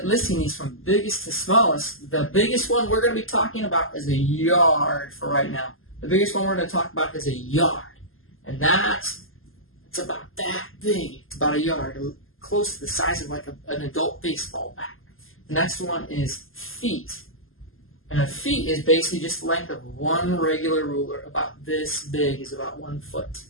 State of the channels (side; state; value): right; late; 0.60 ms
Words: these from biggest to smallest, the biggest one we're going to be talking about is a yard for right now. The biggest one we're going to talk about is a yard. And it's about that big. It's about a yard, close to the size of like an adult baseball bat. The next one is feet. And a feet is basically just the length of one regular ruler. About this big is about 1 foot.